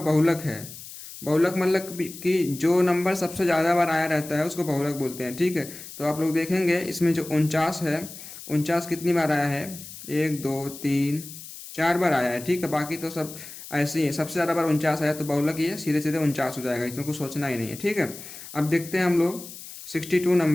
बहुलक है। बहुलक मतलब कि जो नंबर सबसे ज़्यादा बार आया रहता है उसको बहुलक बोलते हैं, ठीक है। तो आप लोग देखेंगे इसमें जो 49 है, 49 कितनी बार आया है, 1 2 3 4 बार आया है, ठीक है। बाकी तो सब ऐसे ही है, सबसे ज़्यादा बार 49 आया तो बहुलक ये सीधे सीधे 49 हो जाएगा, इसमें कुछ सोचना ही नहीं है, ठीक है। अब देखते हैं हम लोग 62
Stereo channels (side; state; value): left; noise; hiss, 14 dB below the sound